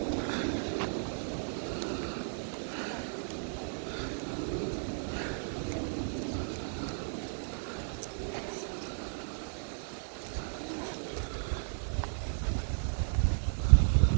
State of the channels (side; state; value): left; silent; 55 dB below the other